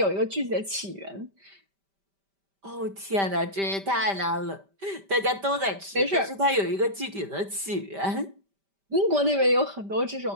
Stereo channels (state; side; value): late; left; 5.1 ms